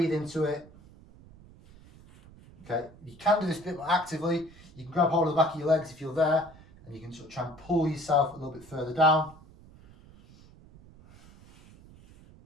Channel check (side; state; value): right; noise; rumble, 22 dB below the sound